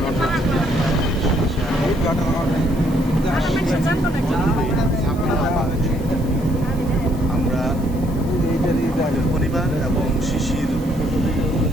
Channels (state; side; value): noise; right; hiss, 22 dB below the sound